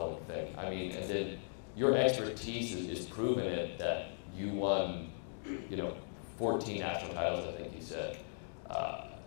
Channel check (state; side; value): silent; right; digital silence